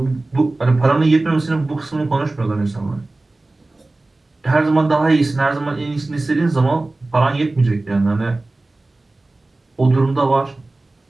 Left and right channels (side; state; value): left; quieter; 3.0 dB